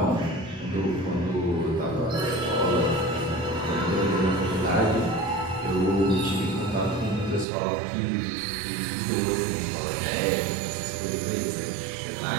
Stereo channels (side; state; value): left; drops out; at 7.5 s